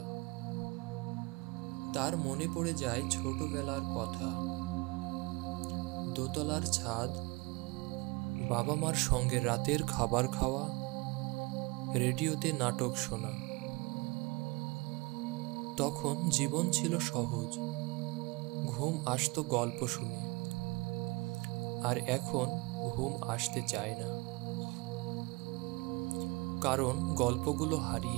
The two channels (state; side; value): quieter; left; 25.5 dB